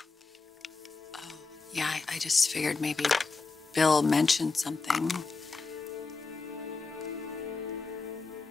Oh, yeah, I just figured maybe Bill mentioned something.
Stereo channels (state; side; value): quieter; right; 4.1 dB